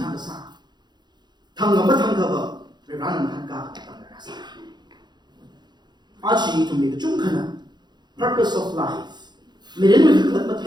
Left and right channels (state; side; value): late; left; 0.21 ms